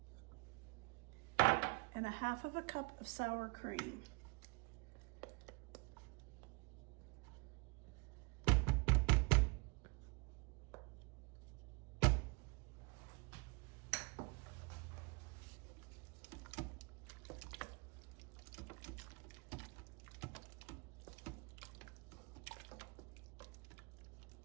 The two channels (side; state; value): left; quieter; 29.8 dB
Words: and 1/2 cup of sour cream.